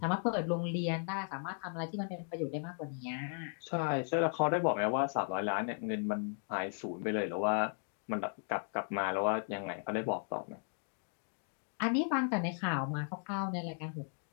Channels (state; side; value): silent; right; 54 dB below the other